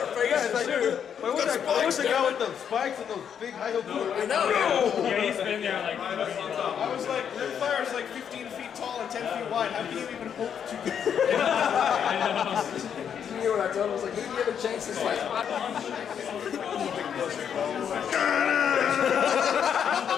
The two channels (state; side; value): quieter; right; 8.1 dB